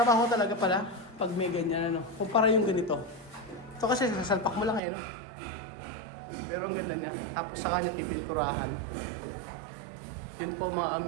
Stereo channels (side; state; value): left; drops out; at 4.8 s